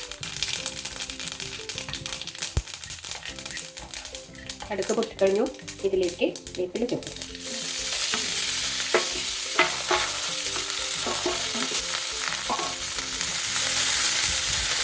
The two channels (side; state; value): both; identical; correlation 1.00